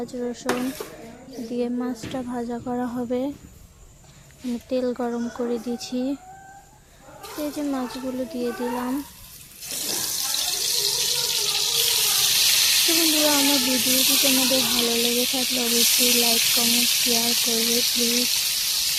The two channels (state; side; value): identical; both; correlation 1.00